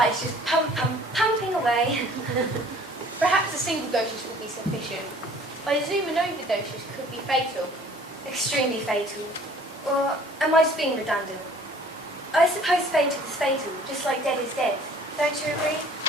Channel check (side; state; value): both; normal; correlation 0.53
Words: is just pumping away. Perhaps a single dosage will be sufficient. I assume an overdosage could be fatal. Extremely fatal. Or am I just being redundant? I suppose fatal is fatal, just like dead is dead. Don't you agree?